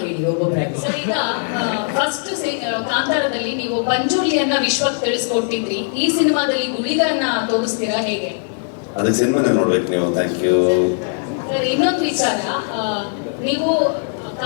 ಕೇಳಿ, ಒಬ್ಬೊಬ್ಬರಾಗಿ. ಸರ್ ಈಗ ಫಸ್ಟ್ ಕಾಂತಾರದಲ್ಲಿ ನೀವು ಪಂಜುರ್ಲಿಯನ್ನ ವಿಶ್ವಕ್ಕೆ ತಿಳಿಸ್ಕೊಟ್ಟಿದ್ರಿ, ಈ ಸಿನಿಮಾದಲ್ಲಿ ಗುಳಿಗನ್ನ ತೋರಿಸ್ತೀರಾ ಹೇಗೆ? ಅದಕ್ಕೆ ಸಿನಿಮಾನೇ ನೋಡ್ಬೇಕು ನೀವು. ಥ್ಯಾಂಕ್ ಯು ಸರ್ ಇನ್ನೊಂದು ವಿಚಾರ, ನೀವು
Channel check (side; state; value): right; silent; digital silence